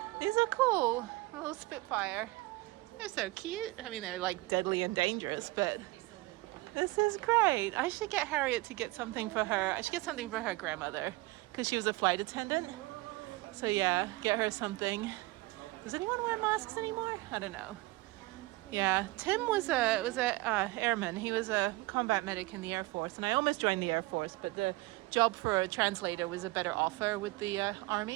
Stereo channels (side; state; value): left; quieter; 21.3 dB